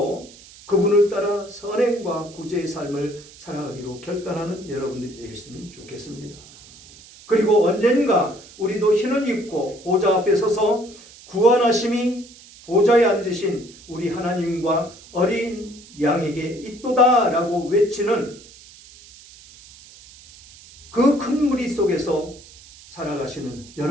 그분을 따라 선행과 구제의 삶을 살아가기로 결단하는 여러분들이 되셨으면 좋겠습니다. 그리고 언젠가 우리도 흰옷 입고 보좌 앞에 서서 구원하심이 보좌에 앉으신 우리 하나님과 어린 양에게 있도다 라고 외치는 그 큰 무리 속에서 살아가시는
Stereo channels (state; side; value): noise; right; hiss, 21 dB below the sound